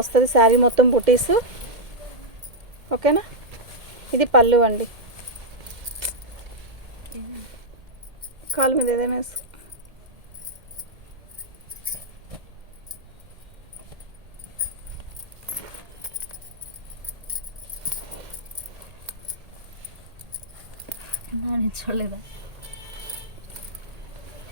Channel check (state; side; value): late; left; 1.8 ms